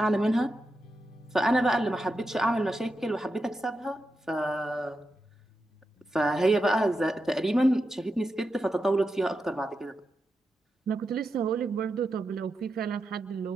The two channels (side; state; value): both; normal; correlation 0.88